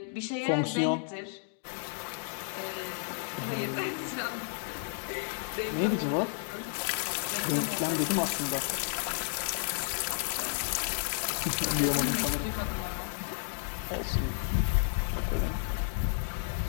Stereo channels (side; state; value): right; silent; digital silence